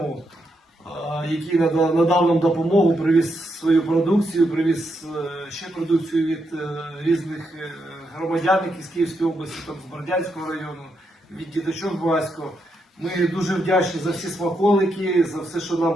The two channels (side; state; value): both; normal; correlation 0.81